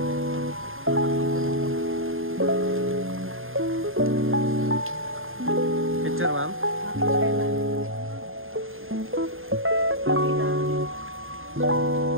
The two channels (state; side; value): late; left; 0.60 ms